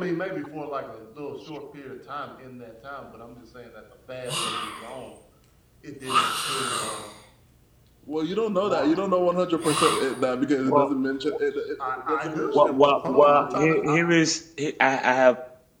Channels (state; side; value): identical; both; correlation 1.00